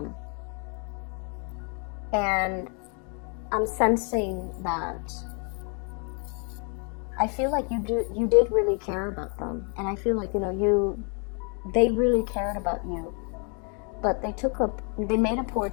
And I'm sensing that I feel like you did really care about them. And I feel like, you know, they really cared about you. But they made a poor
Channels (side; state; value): right; quieter; 38.6 dB